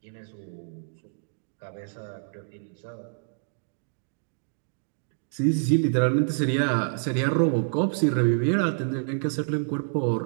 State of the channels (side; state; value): left; silent; digital silence